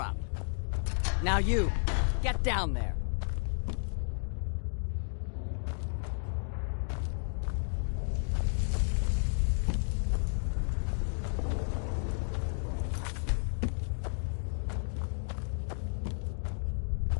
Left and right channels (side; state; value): right; silent; digital silence